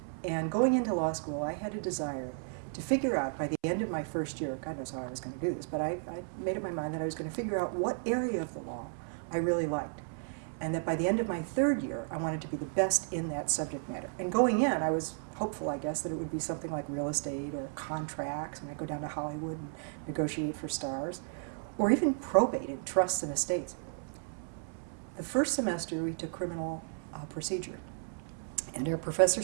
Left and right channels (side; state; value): left; silent; 55 dB below the other